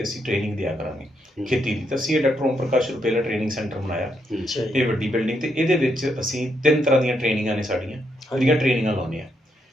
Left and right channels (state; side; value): normal; both; correlation 0.78